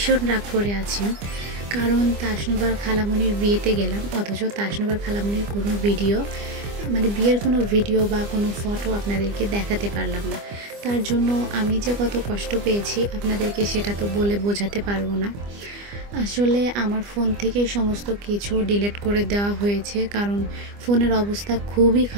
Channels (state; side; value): late; left; 25 ms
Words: রাগ করে আছেন, কারণ তাসনুবার খালামণির বিয়েতে গেলাম, অথচ তাসনুবার খালামণির কোনো ভিডিও বিয়ের কোনো ভিডিও বা কোনো ফটো আপনাদেরকে দেখাতে পারলাম না। তার জন্য আমি যে কত কষ্ট পেয়েছি আপনাদেরকে সেটা তো বলে বোঝাতে পারবো না। আসলে আমার ফোন থেকে সমস্ত কিছু ডিলিট করে দেওয়া হয়েছে, কারণ ফোনের অবস্থা খুবই